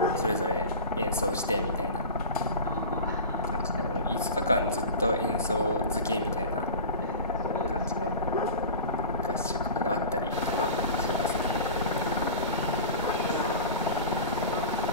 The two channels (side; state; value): both; inverted; correlation -0.32